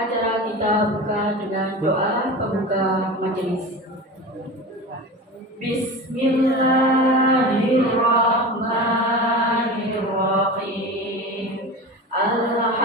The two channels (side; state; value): both; normal; correlation 0.30